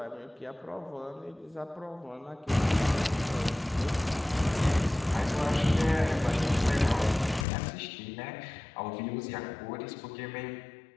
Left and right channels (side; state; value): right; drops out; at 7.5 s